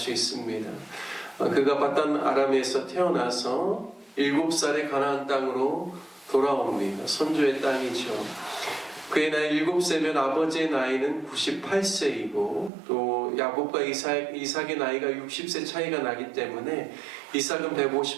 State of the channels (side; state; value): left; drops out; at 12.7 s